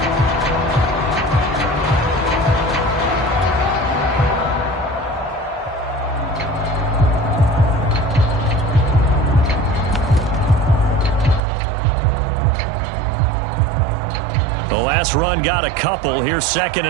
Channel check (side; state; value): left; drops out; at 11.4 s